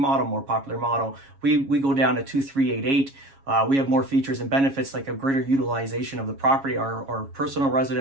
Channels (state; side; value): late; left; 7.3 ms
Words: more popular model. We go down to 2388. We have more features and benefits like a greater utilization of the property, our personal